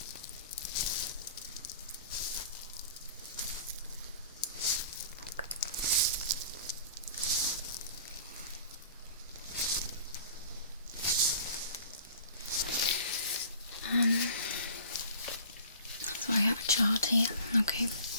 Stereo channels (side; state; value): both; inverted; correlation -0.46